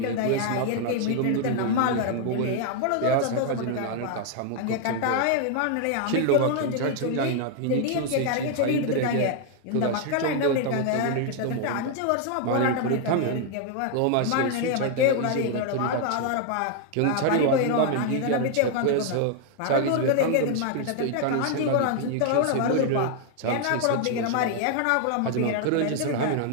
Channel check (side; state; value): both; different; correlation 0.00